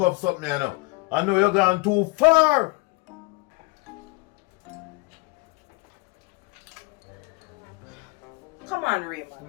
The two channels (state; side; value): quieter; right; 25.6 dB